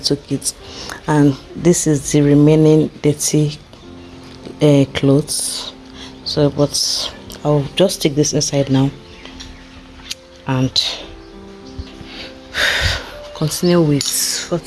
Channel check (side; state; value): both; identical; correlation 1.00